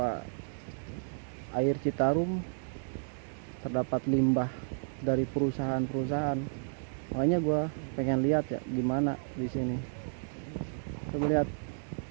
air Citarum terdapat limbah dari perusahaan-perusahaan. Makanya gua pengen lihat ya gimana di sini. Coba lihat.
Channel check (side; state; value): left; silent; digital silence